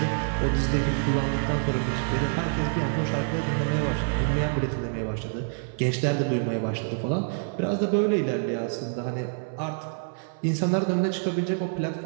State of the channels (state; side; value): silent; left; 60 dB below the other